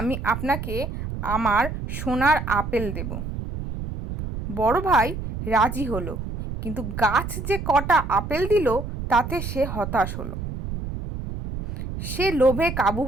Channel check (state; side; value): noise; right; rumble, 6 dB below the sound